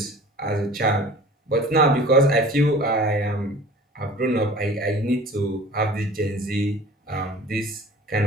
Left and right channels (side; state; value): both; normal; correlation 0.44